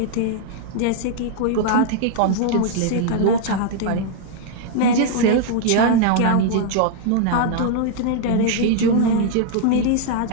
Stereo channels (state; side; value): different; both; correlation 0.00